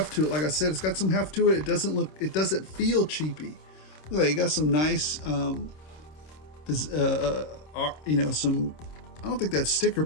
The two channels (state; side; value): late; right; 26 ms